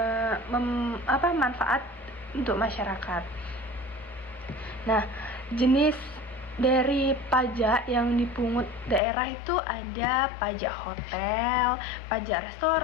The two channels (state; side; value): drops out; right; at 9.0 s